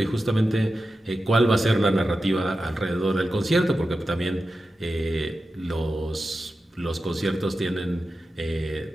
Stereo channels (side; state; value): both; normal; correlation 0.92